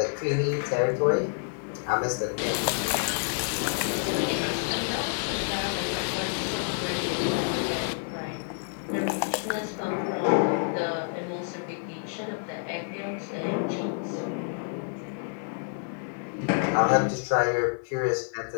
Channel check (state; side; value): silent; right; digital silence